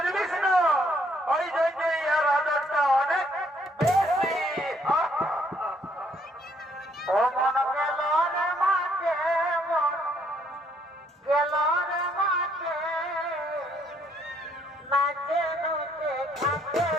না? ওই জন্যই এর আদরটা অনেক বেশি। ও মন গেল রে মাঠে, মন গেল রে মাঠে, নাচে নুচে খাতে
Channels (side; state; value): both; normal; correlation 0.68